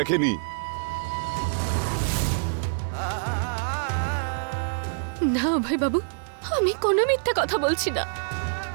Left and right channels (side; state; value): left; silent; 61 dB below the other